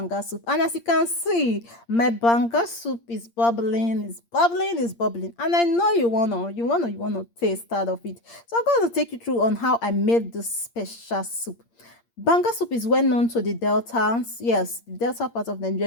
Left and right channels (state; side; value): late; right; 8.6 ms